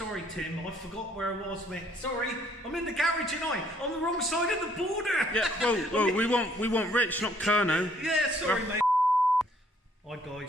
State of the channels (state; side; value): normal; both; correlation 0.64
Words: Tim. I forgot where I was, mate. Sorry, I'm in the garage tonight, on the wrong side of the border. Yeah, well, we want Rich, not Kerno. Yeah, sorry, mate. Hi,